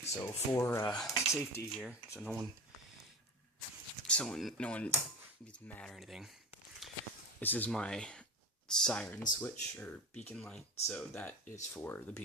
So for safety here, so no one gets mad or anything, this is my siren switch, or beacon light, so that is for the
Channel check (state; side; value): normal; both; correlation 0.29